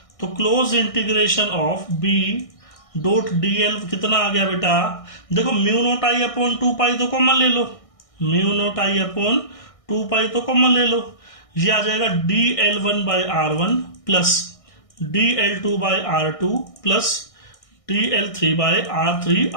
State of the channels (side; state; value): right; late; 1.6 ms